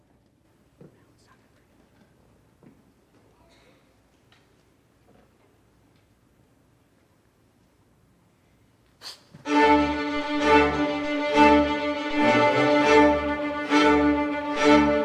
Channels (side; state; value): both; identical; correlation 1.00